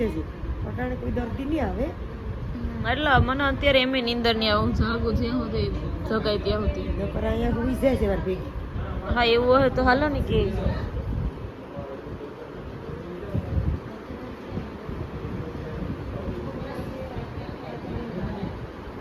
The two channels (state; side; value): identical; both; correlation 1.00